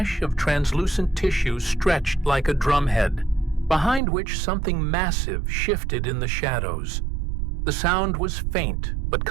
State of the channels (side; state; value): left; drops out; at 4.0 s